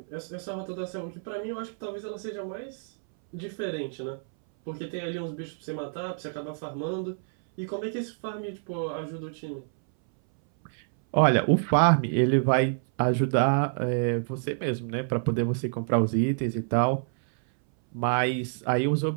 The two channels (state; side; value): silent; left; 60 dB below the other